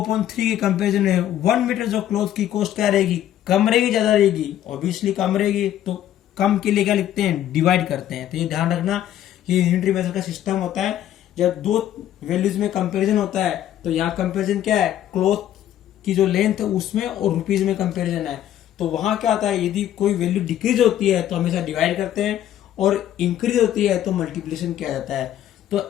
के कंपेरिजन में 1 मीटर जो क्लॉथ की कॉस्ट क्या रहेगी कम रहेगी ज्यादा रहेगी. ऑब्वियसली कम रहेगी. तो कम के लिए क्या लिखते हैं डिवाइड करते हैं. तो ये ध्यान रखना ये यूनिटरी मेथड का सिस्टम होता है. जब दो वैल्यूज में कंपैरिजन होता है तो यहाँ कंपैरिजन क्या है क्लॉथ की जो लेंथ है उसमें और रुपीज में कंपैरिजन है. तो वहां क्या होता है यदि कोई वैल्यू डिक्रीज होती है तो हमेशा डिवाइड करते हैं और इंक्रीज होती है तो मल्टीप्लिकेशन किया जाता है.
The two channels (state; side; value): quieter; right; 11.7 dB